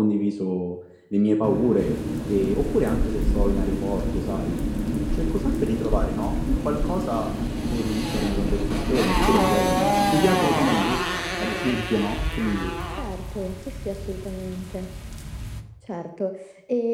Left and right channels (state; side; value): identical; both; correlation 1.00